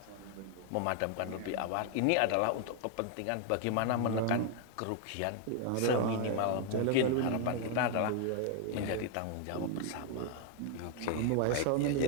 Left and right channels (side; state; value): both; different; correlation 0.00